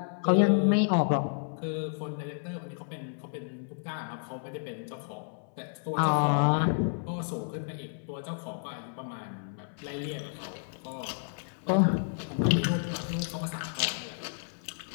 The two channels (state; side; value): silent; right; 57 dB below the other